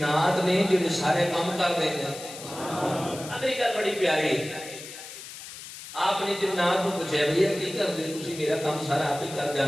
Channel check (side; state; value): left; noise; hiss, 13 dB below the sound